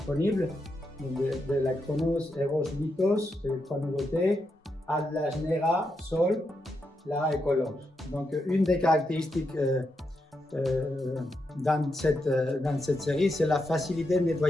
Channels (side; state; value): both; normal; correlation 0.83